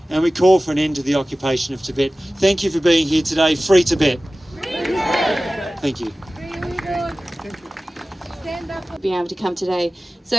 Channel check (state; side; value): normal; both; correlation 0.97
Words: and we call for an end to the occupation of Tibet. Thank you for being here today. Free Tibet. Free Tibet. Thank you. Being able to come today.